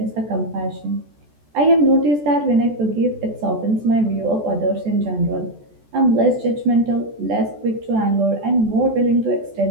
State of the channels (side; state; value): left; late; 14 ms